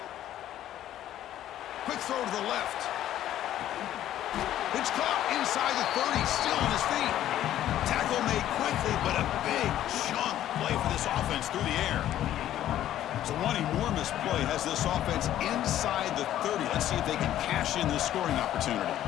Quick throw to the left. It's caught inside the 30, still on his feet. Tackle made quickly, but a big chunk play for this offense through the air. So one enormous play has this offense inside the 30. Let's see if they can cash in this scoring opportunity.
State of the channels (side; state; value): right; quieter; 12.3 dB